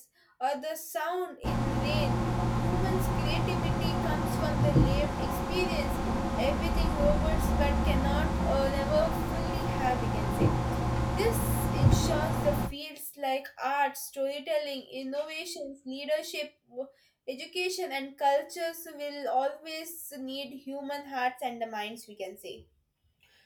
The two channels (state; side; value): identical; both; correlation 1.00